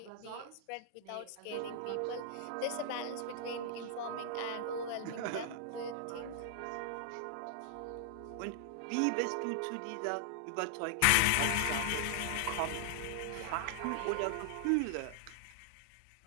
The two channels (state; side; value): different; both; correlation -0.01